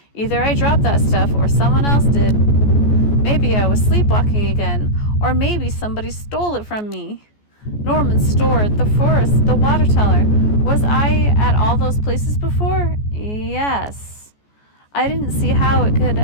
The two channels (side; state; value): right; late; 14 ms